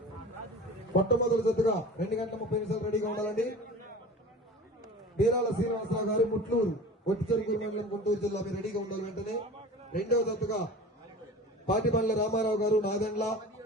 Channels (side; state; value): both; normal; correlation 0.37